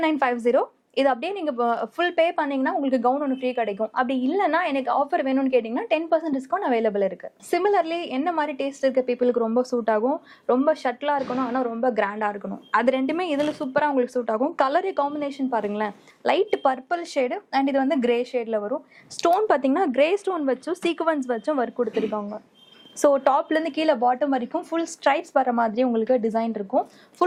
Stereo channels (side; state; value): both; identical; correlation 1.00